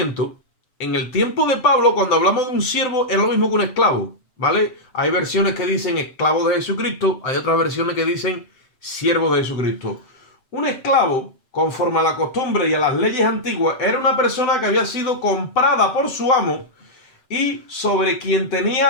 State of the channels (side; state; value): right; late; 7.8 ms